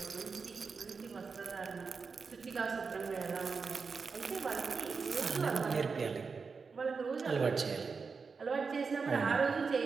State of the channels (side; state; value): left; quieter; 5.0 dB